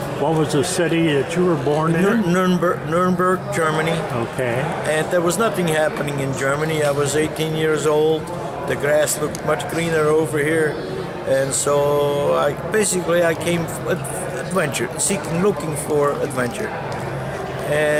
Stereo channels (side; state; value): both; identical; correlation 1.00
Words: What was the city that you were born in? Nuremberg, Germany. Okay. And there was nothing happening in Germany. I was 18 years old. The grass looked much greener over here. And so I came adventure, looking for adventure.